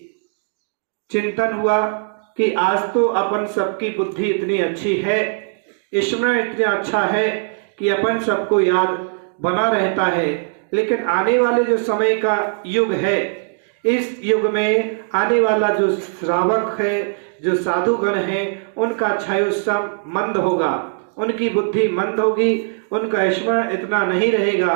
चिंतन हुआ कि आज तो अपन सबकी बुद्धि इतनी अच्छी है, स्मरण इतना अच्छा है कि अपन सबको याद बना रहता है, लेकिन आने वाले जो समय का युग है, इस युग में आने वाला जो श्रावक है, जो साधुगण है, उनका क्षयोत्सव मंद होगा, उनकी बुद्धि मंद होगी, उनका स्मरण इतना नहीं रहेगा।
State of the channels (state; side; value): silent; left; digital silence